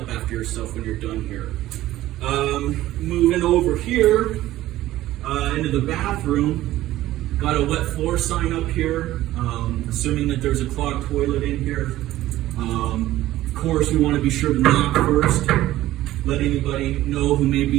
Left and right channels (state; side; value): quieter; left; 15.1 dB